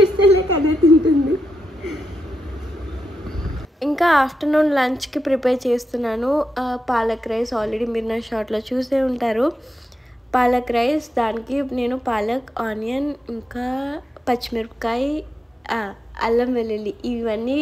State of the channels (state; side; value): normal; both; correlation 0.86